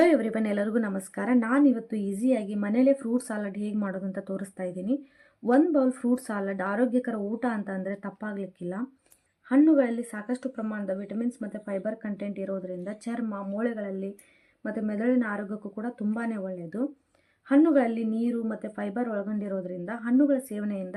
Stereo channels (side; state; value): both; identical; correlation 1.00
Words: everyone, ಎಲ್ಲರಿಗೂ ನಮಸ್ಕಾರ. ನಾನು ಇವತ್ತು ಈಸಿಯಾಗಿ ಮನೇಲೆ ಫ್ರೂಟ್ ಸಾಲಡ್ ಹೇಗೆ ಮಾಡೋದು ಅಂತ ತೋರಿಸ್ತಾ ಇದ್ದೀನಿ. 1 ಬೌಲ್ ಫ್ರೂಟ್ ಸಾಲಡ್ ಆರೋಗ್ಯಕರ ಊಟ ಅಂತ ಅಂದರೆ ತಪ್ಪಾಗಲಿಕ್ಕಿಲ್ಲ. ಹಣ್ಣುಗಳಲ್ಲಿ ಸಾಕಷ್ಟು ಪ್ರಮಾಣದ ವಿಟಮಿನ್ಸ್ ಮತ್ತು ಫೈಬರ್ ಕಂಟೆಂಟ್ ಇರೋದರಿಂದ ಚರ್ಮ, ಮೂಳೆಗಳಲ್ಲಿ ಮತ್ತು ಮೆದುಳಿನ ಆರೋಗ್ಯಕ್ಕೂ ಕೂಡ ತುಂಬಾ ಒಳ್ಳೆಯದು. ಹಣ್ಣುಗಳಲ್ಲಿ ನೀರು ಮತ್ತು ಫೈಬರ್ ಒಳಗೊಂಡಿರೋದ್ರಿಂದ ಹಣ್ಣುಗಳ